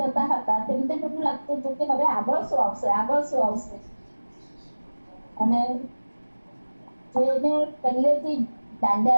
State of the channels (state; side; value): inverted; both; correlation -1.00